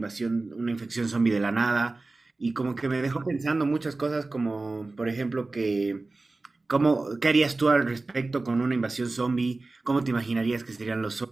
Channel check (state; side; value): quieter; left; 3.3 dB